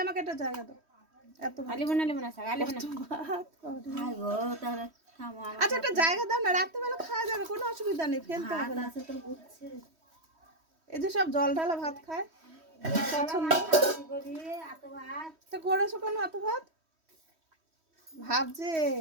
আমাকে একটা জায়গা দাও। এত আলিব না, শাক আলিব না। ভাত খাইগো তাহলে। আচ্ছা, একটা জায়গা দাও না, রাত্রেবেলা খাওয়া যাবে, কোনো অসুবিধা নেই, ফেলতে হবে না। এই যে সব জল ঢালা ভাত খায়, পছন্দ তো করেছো কেন এত ভাত? ভাবছে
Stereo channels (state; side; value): late; left; 3.1 ms